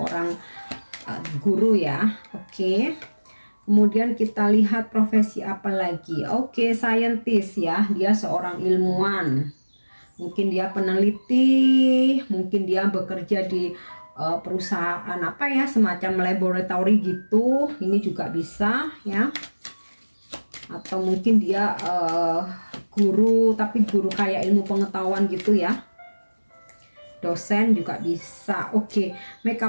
guru ya. Oke. Kemudian kita lihat profesi apa lagi. Oke, scientist ya, dia seorang ilmuwan. Mungkin dia peneliti, mungkin dia bekerja di perusahaan semacam laboratory gitu. Ini juga bisa ya. Atau mungkin dia guru, tapi guru kayak ilmu pengetahuan gitu ya. Dosen juga bisa. Oke,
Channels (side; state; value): both; inverted; correlation -1.00